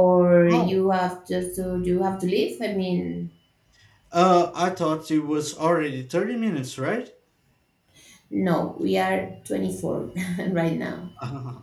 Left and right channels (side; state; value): both; identical; correlation 1.00